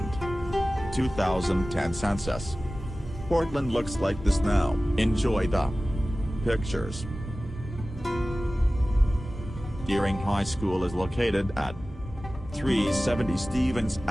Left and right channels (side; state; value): both; normal; correlation 0.97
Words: 2010 census. Portland looks like this now. Enjoy the pictures. Deering High School is located at 370 Stevens